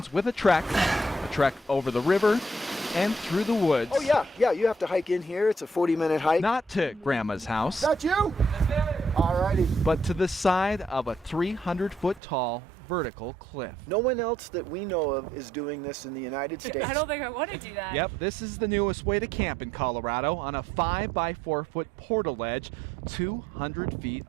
with a trek over the river and through the woods. Oh yeah, you have to hike in here. It's a 40-minute hike. Not to Grandma's house. That you? Alrighty. But to the side of a 300-foot tall vertical cliff. No one else that we know of is doing this in the United States. I don't think I want to do that. Yep, this is the newest way to camp in Colorado on a 5 by 4 foot portal ledge 200 feet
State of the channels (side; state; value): left; drops out; at 12.2 s